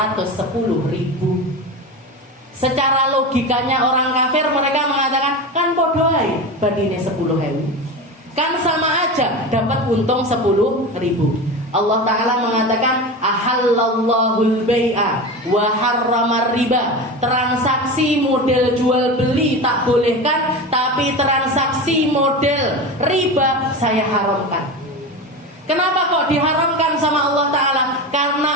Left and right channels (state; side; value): normal; both; correlation 0.25